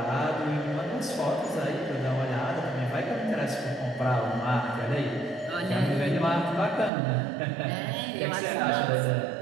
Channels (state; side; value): drops out; left; at 6.9 s